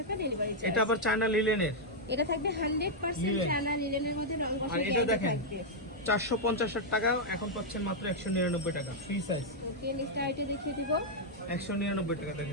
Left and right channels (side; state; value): both; normal; correlation -0.04